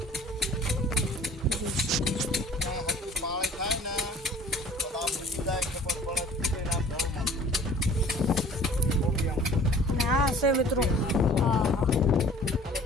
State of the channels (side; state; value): both; normal; correlation 0.49